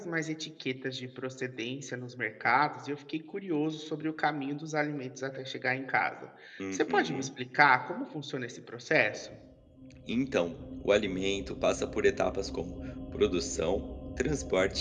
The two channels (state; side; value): identical; both; correlation 1.00